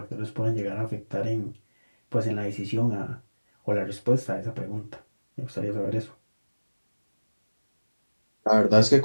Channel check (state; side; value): inverted; both; correlation -1.00